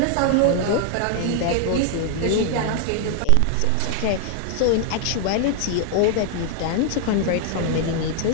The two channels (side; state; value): both; different; correlation 0.00